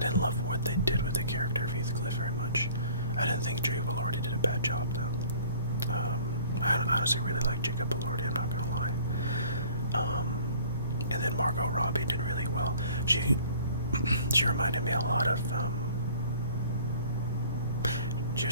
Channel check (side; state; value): both; inverted; correlation -0.51